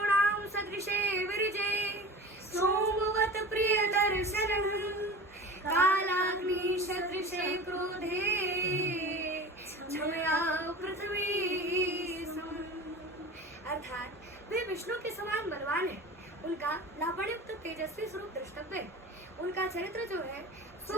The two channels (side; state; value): both; normal; correlation 0.36